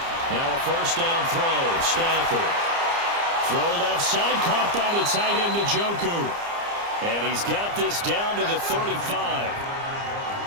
Now a first down throw. Stafford. Throw left side, caught by the tight end Njoku. And he's got this down to the 35.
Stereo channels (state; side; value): late; left; 29 ms